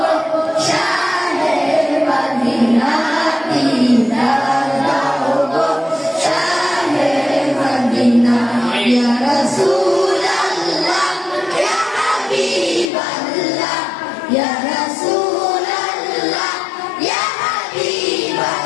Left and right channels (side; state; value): right; drops out; at 12.9 s